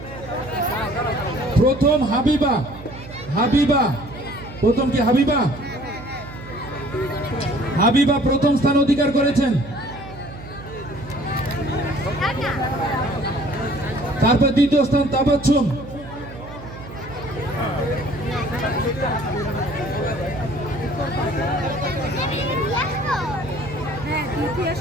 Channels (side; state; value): right; noise; hum, 15 dB below the sound